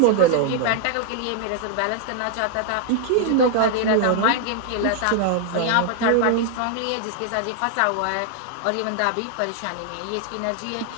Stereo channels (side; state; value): both; different; correlation 0.00